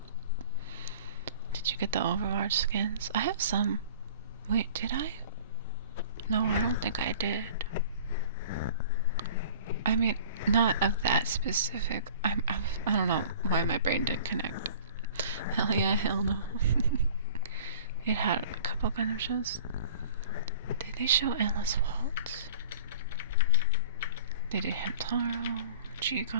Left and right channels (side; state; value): both; inverted; correlation -0.45